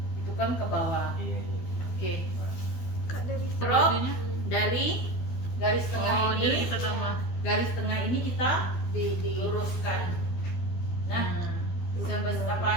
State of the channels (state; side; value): late; right; 12 ms